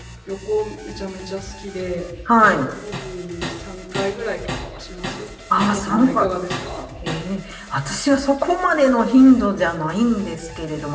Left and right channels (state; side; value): identical; both; correlation 1.00